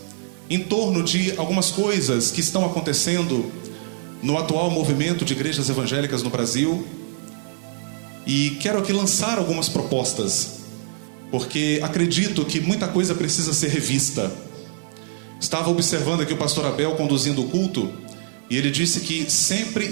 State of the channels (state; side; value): silent; left; digital silence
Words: em torno de algumas coisas que estão acontecendo no atual movimento de igrejas evangélicas no Brasil, e quero aqui lançar algumas propostas, porque acredito que muita coisa precisa ser revista. Estava observando aqui o pastor Abel conduzindo o culto, e ele disse que sempre